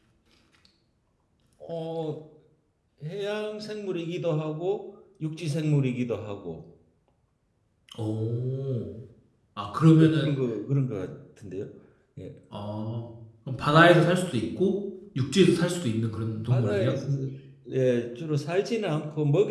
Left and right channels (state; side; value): identical; both; correlation 1.00